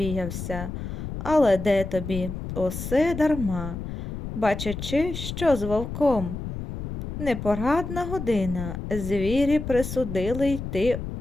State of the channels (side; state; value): left; noise; rumble, 7 dB below the sound